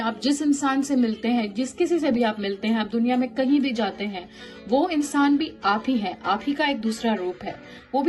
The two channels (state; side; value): identical; both; correlation 1.00